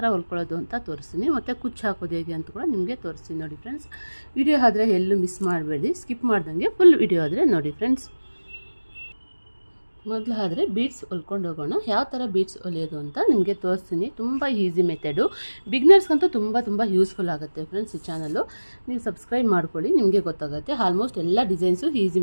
ಹೊಲ್ಕೊಳ್ಳೋದು ಅಂತ ತೋರಿಸ್ತೀನಿ. ಮತ್ತು ಕುಚ್ಚು ಹಾಕೋದು ಹೇಗೆ ಅಂತ ಕೂಡ ನಿಮಗೆ ತೋರಿಸ್ತೀನಿ. ನೋಡಿ ಫ್ರೆಂಡ್ಸ್, ವಿಡಿಯೋ ಆದರೆ ಎಲ್ಲೂ ಮಿಸ್ ಮಾಡಬೇಡಿ, ಸ್ಕಿಪ್ ಮಾಡ್ದಂಗೆ ಫುಲ್ ವಿಡಿಯೋ ಆದರೆ ನೋಡಿ ಫ್ರೆಂಡ್ಸ್. ಮೊದಲಾದರೆ ಬೀಡ್ಸ್ ಹೊಲ್ಕೊಂಡು ಹೋಗೋಣ. ಯಾವ ಥರ ಬೀಡ್ಸ್ ಹೊಲಿಯೋದು ಅಂತ ನಿಮಗೆ ತೋರಿಸ್ತೀನಿ. ತುಂಬ ಈಸಿ ಮೆಥಡು, ಬಿಗ್ನರ್ಸ್ಗಂತೂ ತುಂಬ ಯೂಸ್ಫುಲ್ ಆಗುತ್ತೆ ಫ್ರೆಂಡ್ಸ್. ಈ ಚಾನಲ್ಲು ನೀವು ಸಬ್ಸ್ಕ್ರೈಬ್ ಮಾಡ್ಕೊಳ್ಳಿ, ನಿಮಗೆ ಗೊತ್ತಾಗುತ್ತೆ. ಆಲ್ಮೋಸ್ಟ್ ಎಲ್ಲ ಡಿಸೈನ್ಸು ಈಸಿ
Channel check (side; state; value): both; inverted; correlation -1.00